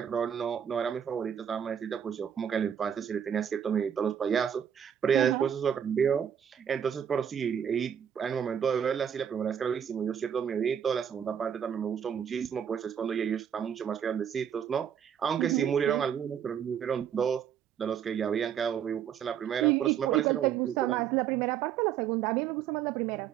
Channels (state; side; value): quieter; left; 8.6 dB